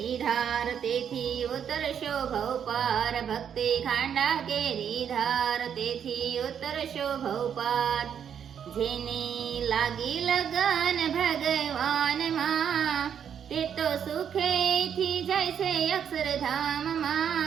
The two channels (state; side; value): quieter; left; 8.3 dB